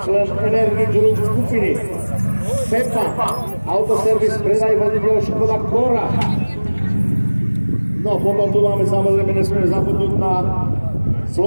člen Energy Group skupiny, Pepa, autoservis, predaj vozidel Škoda Kora. No potom tu máme samozrejme, nesmieme zabudnúť na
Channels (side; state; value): both; inverted; correlation -1.00